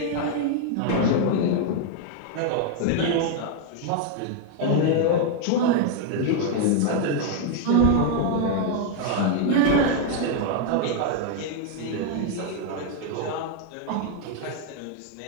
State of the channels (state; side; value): different; both; correlation 0.00